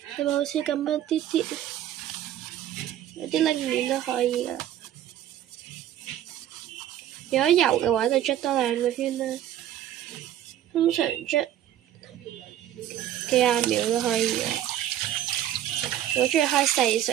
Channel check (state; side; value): quieter; left; 11.9 dB